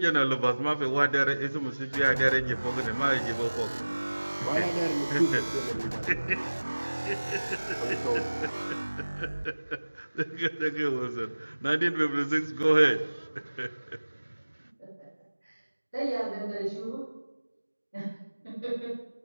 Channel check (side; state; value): both; inverted; correlation -1.00